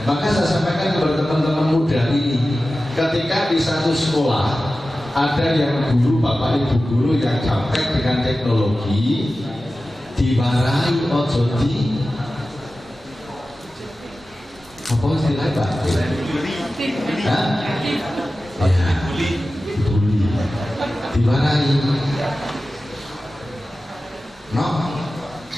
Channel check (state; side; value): normal; both; correlation 0.95